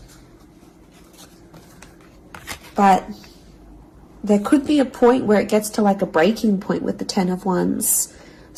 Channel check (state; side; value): identical; both; correlation 1.00